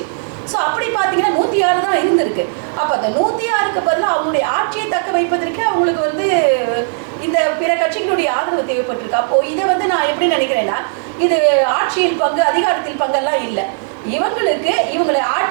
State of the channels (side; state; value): left; silent; 69 dB below the other